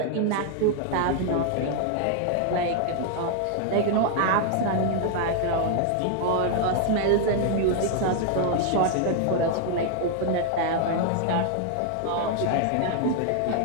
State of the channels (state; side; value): different; both; correlation 0.00